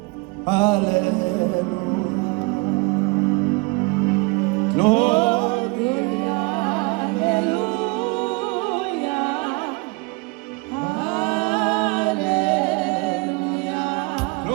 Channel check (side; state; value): left; quieter; 27.2 dB